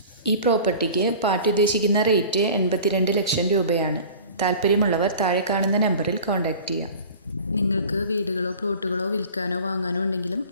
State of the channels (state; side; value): inverted; both; correlation -0.40